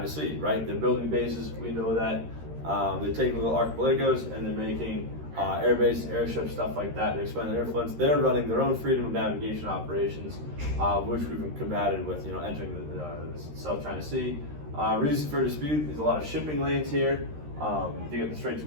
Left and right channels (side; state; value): left; late; 13 ms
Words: Sea, right? They're building bases, we know that. They're taking little archipelagos and they're making air bases, airships, stuff like that. They're expanding their influence. They're running their own freedom of navigation operations, which we've combated with, entering the South China Sea. Reasons for dispute: there's a lot of shipping lanes here. You get the Straits of